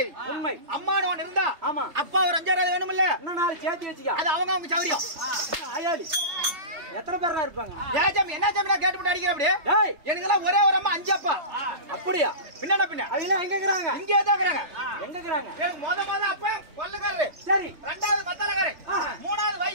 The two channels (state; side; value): late; left; 3.3 ms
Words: உண்மை அம்மானு ஒன்னு இருந்தா ஆமா அப்பா ஒரு 5000 வேணும்ல இன்னும் நாலு சேர்த்து வச்சுக்க அது அவங்க சௌரியம் ஆயாலி எத்தனை பேரா இருப்பாங்க ஏஜம் என்ன ஜம் நான் கேட்டு அடிக்கிற அப்படியே டேய் எனக்கெல்லாம் ஒரே ஒரு அம்மா 5 அப்பா அப்படியே பின்ன பின்ன அவங்க எங்க இருக்கறாங்க இங்கே தான் இருக்கறாங்க எங்க இருக்கறாங்க எனக்கு மொத அப்பா கொல்லக்காரரு சரி ரெண்டாவது மத்தலக்காரரு மூணாவது